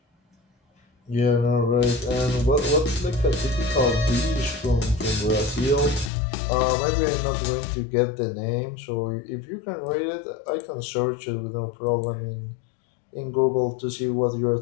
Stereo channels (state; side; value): drops out; right; at 6.1 s